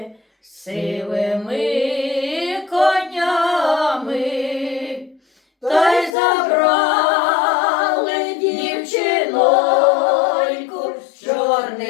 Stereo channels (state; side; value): drops out; right; at 6.2 s